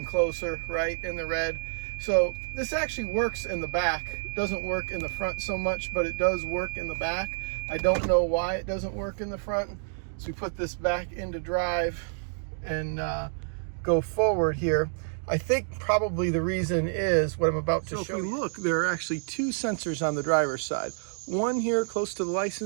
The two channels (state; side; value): silent; left; digital silence